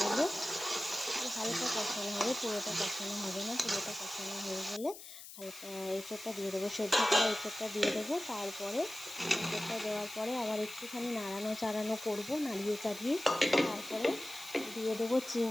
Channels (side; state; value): left; noise; hiss, 14 dB below the sound